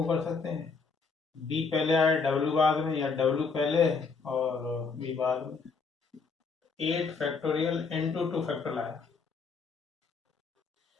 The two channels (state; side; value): quieter; right; 4.8 dB